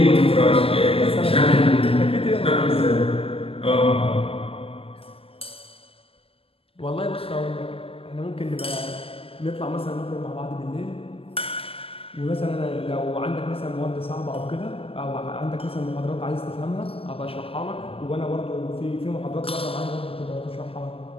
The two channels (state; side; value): late; right; 0.27 ms